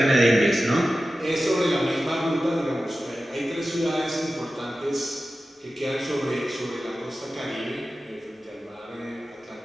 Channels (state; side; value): normal; both; correlation 0.94